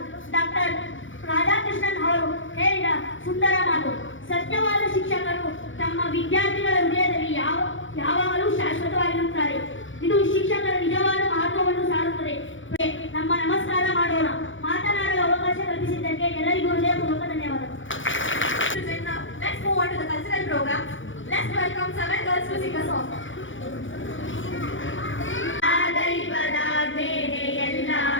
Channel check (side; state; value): right; late; 0.56 ms